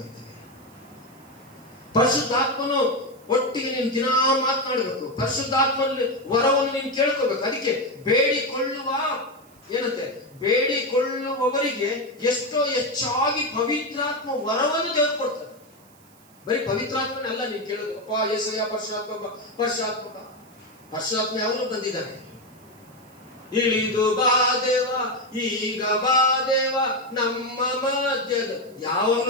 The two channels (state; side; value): noise; right; hiss, 28 dB below the sound